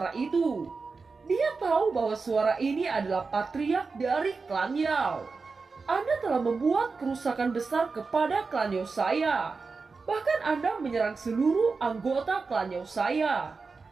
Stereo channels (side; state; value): left; quieter; 4.4 dB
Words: itu. Dia tahu bahwa suara ini adalah patriark dari klan Yao. Anda telah membuat kerusakan besar kepada klan Yao saya. Bahkan Anda menyerang seluruh anggota klan Yao saya.